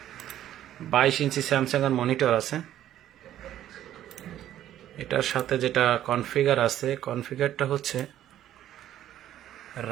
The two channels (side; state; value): left; quieter; 12.0 dB